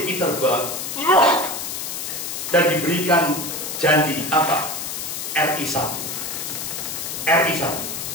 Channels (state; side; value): noise; left; hiss, 5 dB below the sound